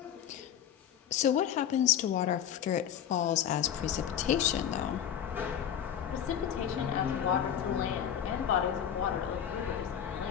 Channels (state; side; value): quieter; right; 9.4 dB